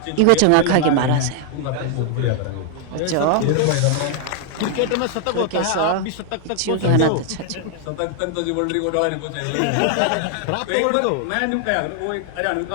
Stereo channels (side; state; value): both; different; correlation 0.00